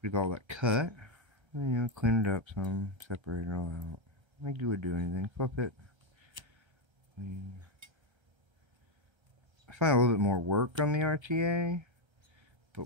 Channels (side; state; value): left; late; 1.3 ms